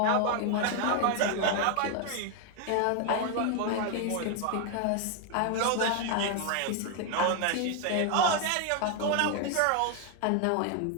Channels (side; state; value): both; different; correlation 0.01